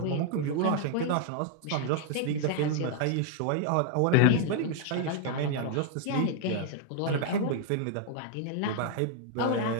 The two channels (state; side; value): different; both; correlation 0.00